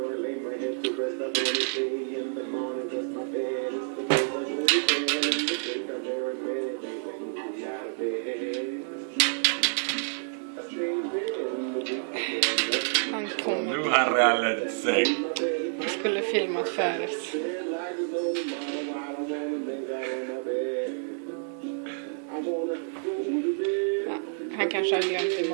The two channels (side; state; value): left; silent; digital silence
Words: I lay my head to rest. I do anything in the morning, just my bed. It's the place I go to bed and the thing I dare admit. They make me out of bed. I stay in bed. Han kom. Nu har han rallat sig. Han skulle filmat förut. Ja, han kanske har glömt